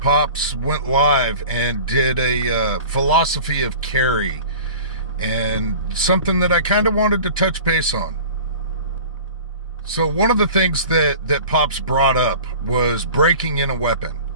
went live and did a philosophy of carry, and something that I kind of wanted to touch base on. So one of the things that Pops brought up was breaking in a weapon.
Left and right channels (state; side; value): inverted; both; correlation -0.40